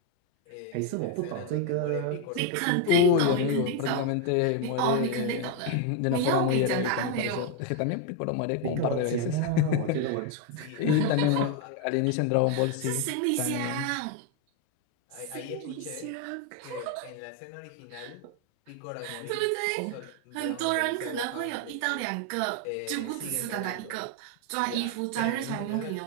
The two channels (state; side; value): different; both; correlation 0.01